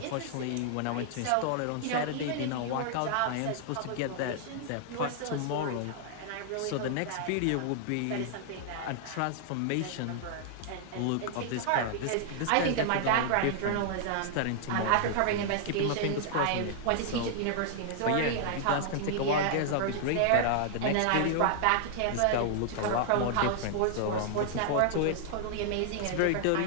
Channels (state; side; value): different; both; correlation -0.01